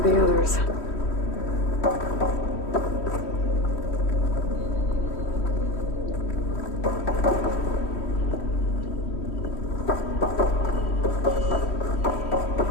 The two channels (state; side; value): late; right; 3.1 ms